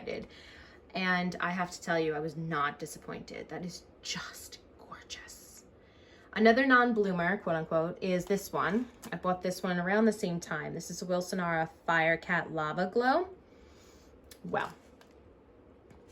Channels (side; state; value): both; identical; correlation 1.00